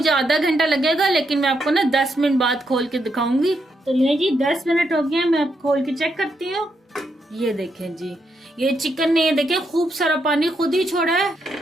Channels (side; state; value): both; normal; correlation 0.80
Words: आधा घंटा लगेगा, लेकिन मैं आपको ना 10 मिनट बाद खोल के दिखाऊंगी। तो ये जी 10 मिनट हो गए, मैं अब खोल के चेक करती हूँ। ये देखें जी ये चिकन ने ये देखें खूब सारा पानी खुद ही छोड़ा है।